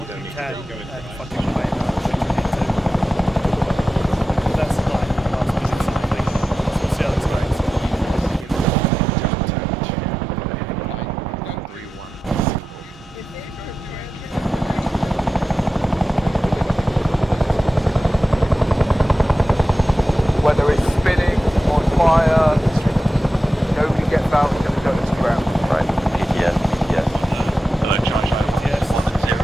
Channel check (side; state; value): both; normal; correlation 0.92